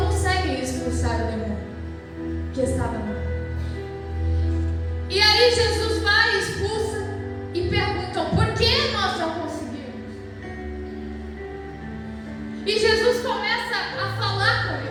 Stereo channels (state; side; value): identical; both; correlation 1.00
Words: conseguem expulsar o demônio que estava nele. E aí Jesus vai, expulsa e perguntam: por que nós não conseguimos? E Jesus começa a falar com